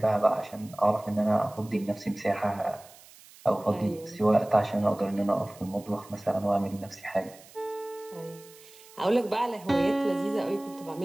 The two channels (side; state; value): right; noise; hiss, 22 dB below the sound